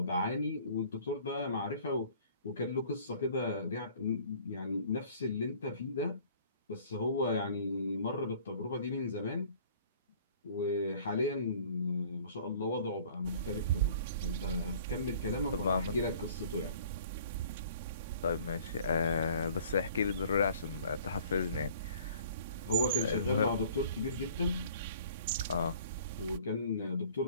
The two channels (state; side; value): inverted; both; correlation -0.52